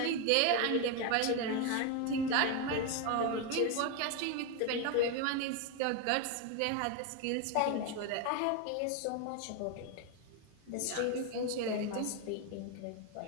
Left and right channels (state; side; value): different; both; correlation 0.01